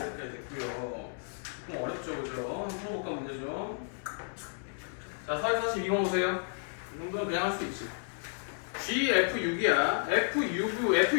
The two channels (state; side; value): silent; right; digital silence